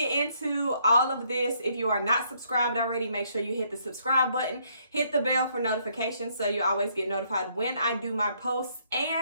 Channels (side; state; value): both; inverted; correlation -0.70